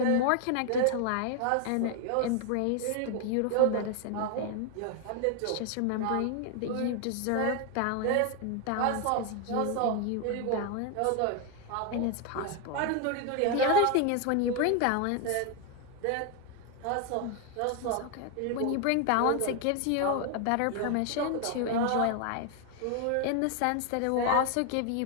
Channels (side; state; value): both; different; correlation 0.01